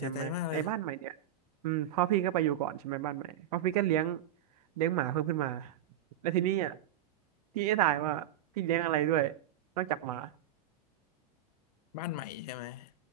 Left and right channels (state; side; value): quieter; left; 10.2 dB